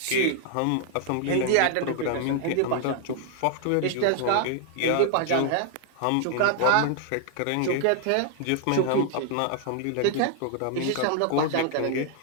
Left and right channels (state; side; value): different; both; correlation 0.00